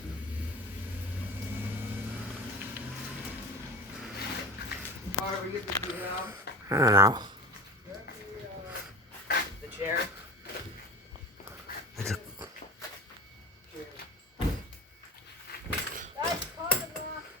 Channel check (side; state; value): both; normal; correlation 0.31